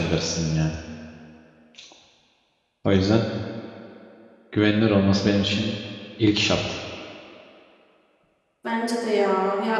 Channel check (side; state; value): both; identical; correlation 1.00